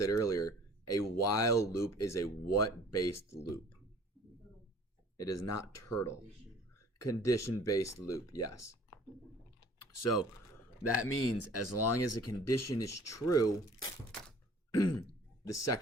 earlier, a while loop is a what-based loop. It is not turtle. Condition-based loop, yes. So that means as long as a condition is true, the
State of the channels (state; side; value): normal; both; correlation 0.51